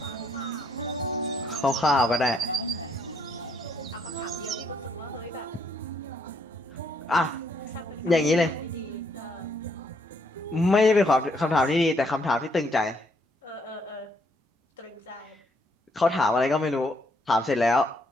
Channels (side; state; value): both; normal; correlation 0.71